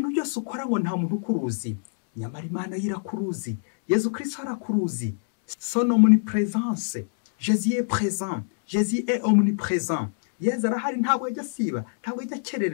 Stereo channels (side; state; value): right; silent; 62 dB below the other